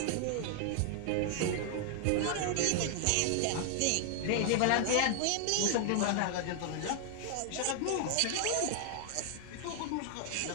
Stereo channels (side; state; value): both; different; correlation 0.00